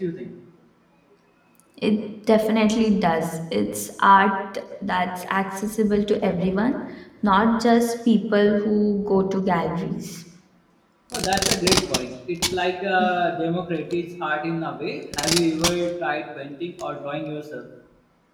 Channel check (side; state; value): both; identical; correlation 1.00